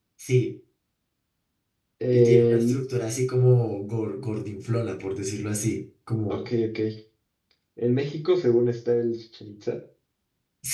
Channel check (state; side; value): identical; both; correlation 1.00